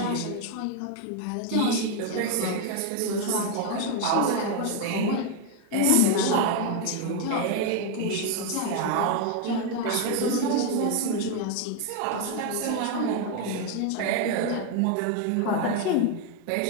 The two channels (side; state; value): both; different; correlation 0.01